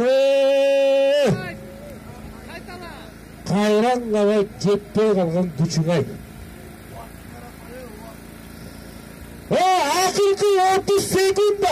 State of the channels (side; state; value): both; identical; correlation 1.00